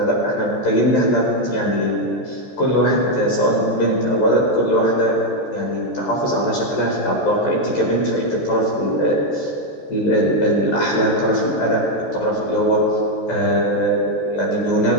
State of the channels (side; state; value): right; late; 14 ms